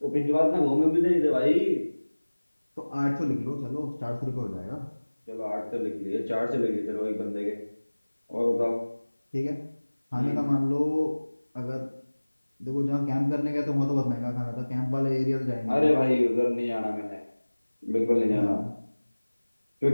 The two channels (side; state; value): both; inverted; correlation -1.00